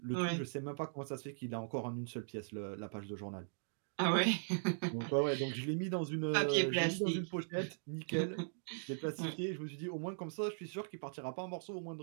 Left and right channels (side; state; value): left; silent; digital silence